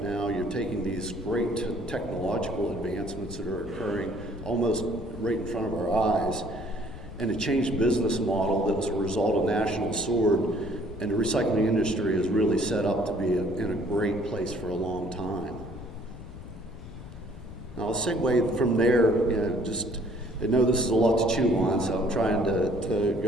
now, you're taking these great technological advancements that are occurring almost right in front of our eyes, and a changed business model that was a result of National Sword, and the recycling industry is really set up to be in a great place for a long time. Now I'll segue from there, I know this is a lot to chew on, so I'm trying to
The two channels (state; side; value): noise; left; rumble, 14 dB below the sound